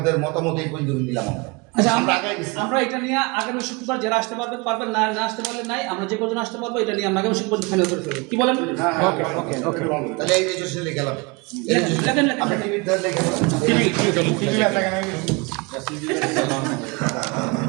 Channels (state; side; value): quieter; left; 27.5 dB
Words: মতামত এই পর্যন্ত নিলাম আমরা। আচ্ছা, আমরা আগাই গেছি। আমরা এটা নিয়ে আগামী শুক্রবার যারা আসতে পারবেন, না আসতে পারলে নাই, আমরা যে কজন আসতে পারবো এটা নিয়ে আমরা আগামী শুক্রবার ফাইনাল করে ফেলবো। কি বলেন? ওকে ওকে ওকে তাহলে এই রেজিস্ট্রেশনে গেলাম, লেখেন। আপনি টিভির ধরে লেখেন।